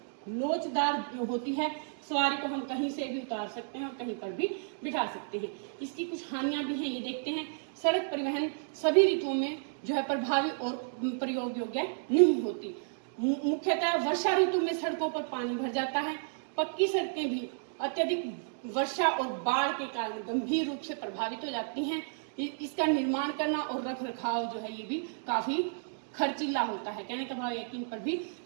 लोचदार होती है। सवारी को हम कहीं से भी उतार सकते हैं और कहीं पर भी बिठा सकते हैं। इसकी कुछ हानियां भी हैं, ये देखते हैं। सड़क परिवहन सभी ऋतुओं में जो है प्रभावी और प्रयोग योग्य नहीं होती। मुख्यतः वर्षा ऋतु में सड़कों पर पानी भर जाता है। पक्की सड़कें भी अत्यधिक वर्षा और बाढ़ के कारण गंभीर रूप से प्रभावित हो जाती हैं। इसका निर्माण करना और रख रखाव जो है ये भी काफी खर्चीला होता है। कहने का भाव यकीन पर भी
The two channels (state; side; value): silent; left; digital silence